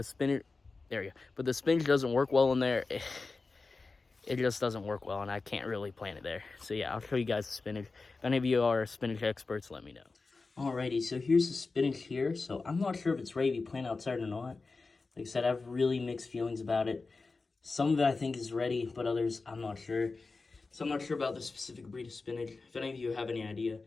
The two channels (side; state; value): right; quieter; 3.9 dB